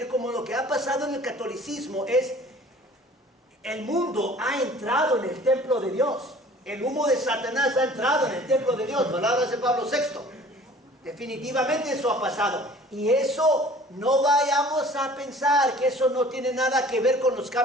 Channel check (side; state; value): both; normal; correlation 0.49